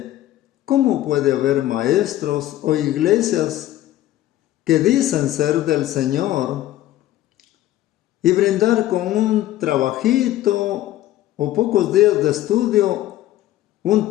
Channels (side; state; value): right; quieter; 14.2 dB